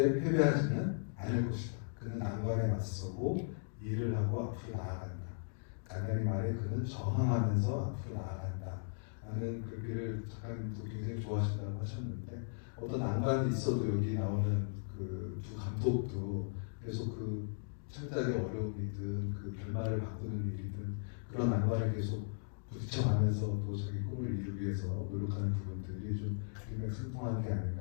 패배하지는 않을 것이다. 그는 난관에 맞서고 일을 하고 앞으로 나아간다. 간단히 말해 그는 저항하면서 앞으로 나아간다. 라는 글귀를 작가님도 굉장히 좋아하신다고 하셨는데 어떤 난관이 있어도 여기 나오는 그 두 감독도 계속 그 창작의 어려움이든 그 결말을 바꾸는 일이든 그런 난관을 계속 부딪혀가면서 또 자기 꿈을 이루기 위해서 노력하는 부분들이 좀 일맥상통한 게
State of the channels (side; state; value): right; silent; digital silence